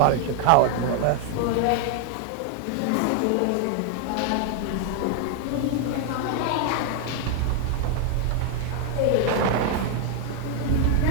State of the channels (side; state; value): both; different; correlation 0.00